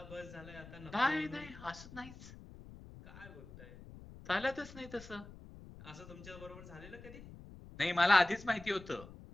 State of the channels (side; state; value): left; noise; rumble, 16 dB below the sound